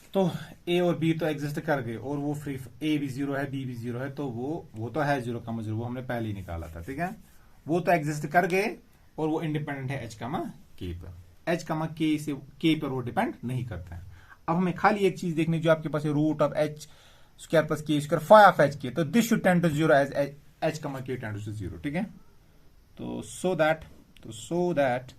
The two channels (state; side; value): identical; both; correlation 1.00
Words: तो a और B तो exist कर गए, और वो फ्री, ए भी 0 है, बी भी 0 है, तो वो तो है 0, 0, वो हमने पहले ही निकाला था. ठीक है, वो तो एग्जिस्ट कर गए, और वो इंडिपेंडेंट है एच के पर. एच के से के पर वो डिपेंड नहीं करता है. अब हमें खाली एक चीज देखनी, जो आपके पास है root of H square plus k square phi of h k. तो this should tend to 0 as h k tend to 0. ठीक है, तो so that